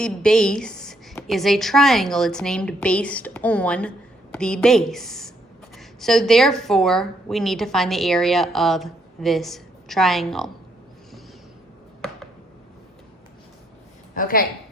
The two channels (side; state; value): both; normal; correlation 0.72